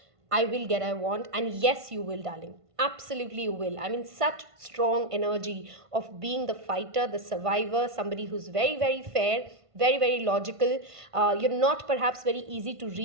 I will get what I want. And yes, you will, darling. Absolutely you will. I mean, such strong energy of being the fighter, the survivor, somebody who's very, very fair, very, very logical. You're not perhaps very easy to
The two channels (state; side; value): late; left; 1.5 ms